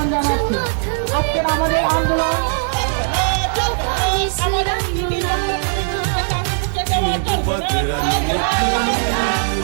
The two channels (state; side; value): silent; left; digital silence